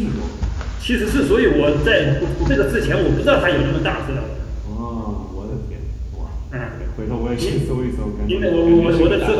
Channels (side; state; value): both; identical; correlation 1.00